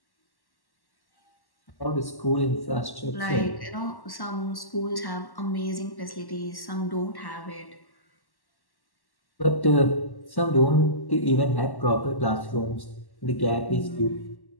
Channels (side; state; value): right; late; 1.1 ms